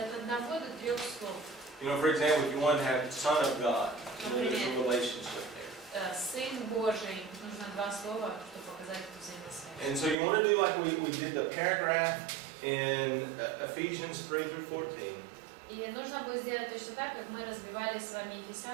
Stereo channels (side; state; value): left; drops out; at 10.2 s